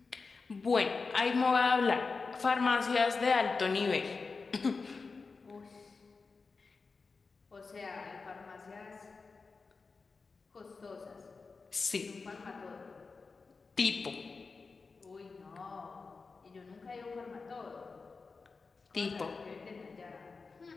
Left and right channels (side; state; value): right; quieter; 4.4 dB